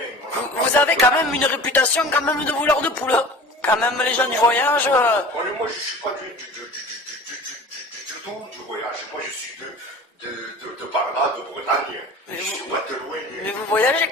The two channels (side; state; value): both; normal; correlation 0.39